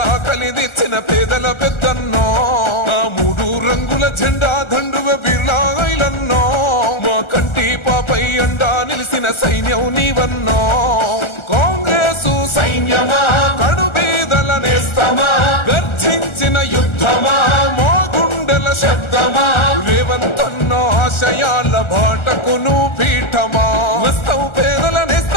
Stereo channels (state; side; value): late; right; 1.4 ms